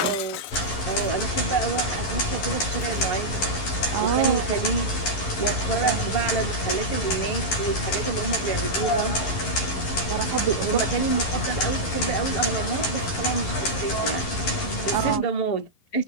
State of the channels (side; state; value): right; late; 11 ms